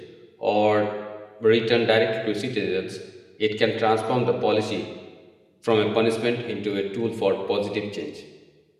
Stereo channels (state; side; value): identical; both; correlation 1.00